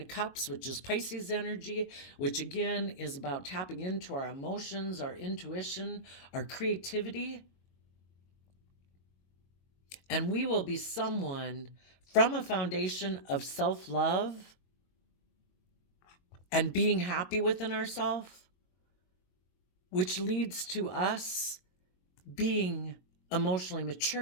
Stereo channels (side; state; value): right; late; 22 ms